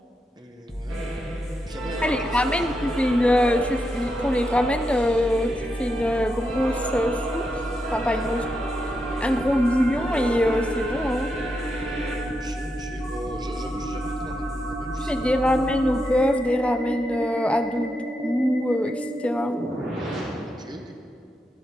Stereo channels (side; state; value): both; normal; correlation 0.84